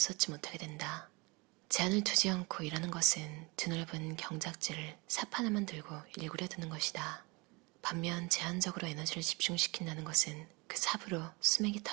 쏟지 못하게 된다. 제한을 두지 않고 일하는 것은 드넓은 경작지를 삽 하나만 들고 일구려 드는 것이다. 반면 제한적으로 에너지를 집중시킨다는 것은 그 삽으로 수맥이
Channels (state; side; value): quieter; left; 26.7 dB